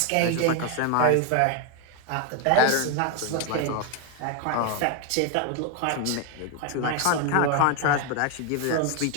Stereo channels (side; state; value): both; different; correlation 0.01